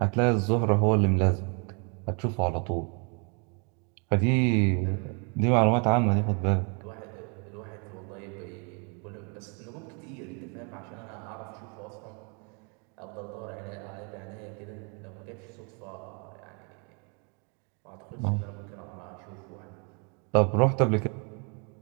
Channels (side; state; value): left; quieter; 35.6 dB